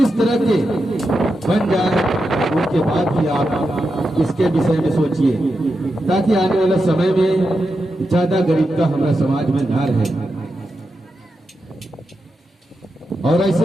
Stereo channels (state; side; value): normal; both; correlation 0.88